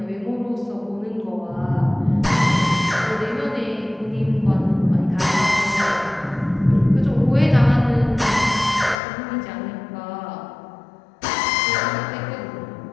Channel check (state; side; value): drops out; right; at 9.0 s